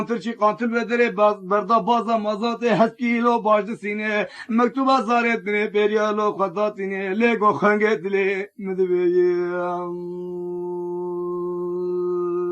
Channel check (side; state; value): both; identical; correlation 1.00